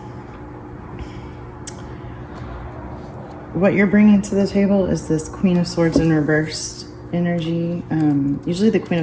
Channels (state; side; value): identical; both; correlation 1.00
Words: what you're bringing to the table is this Queen of Swords in reversed energy. Usually the Queen